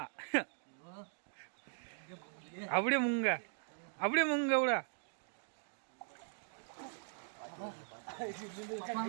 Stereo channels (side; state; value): left; silent; digital silence